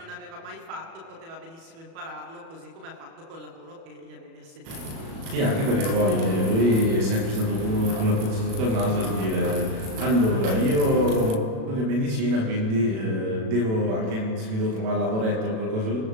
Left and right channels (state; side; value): late; left; 36 ms